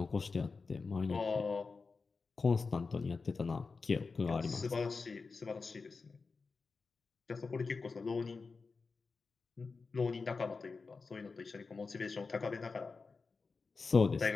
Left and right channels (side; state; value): right; quieter; 4.4 dB